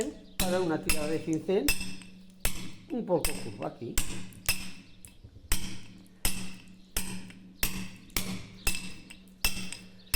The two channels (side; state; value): both; identical; correlation 1.00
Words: para una tirada de cincel un poco curva aquí.